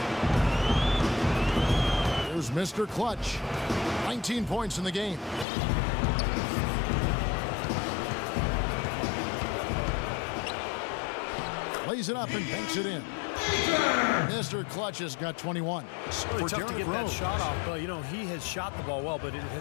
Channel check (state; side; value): drops out; right; at 5.5 s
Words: There's Mr. Clutch. 19 points in the game. Lays it up and banks it in. Mr. Clutch has got 21. It's really tough to get that shot off, but you know, he has shot the ball well, but it